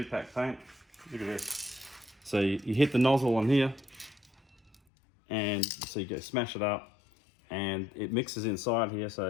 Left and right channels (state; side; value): drops out; right; at 4.8 s